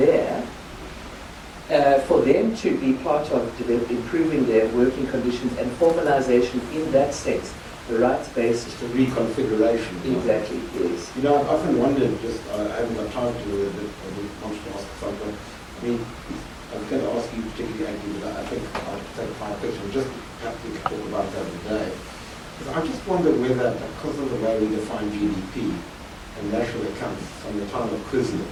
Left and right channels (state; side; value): identical; both; correlation 1.00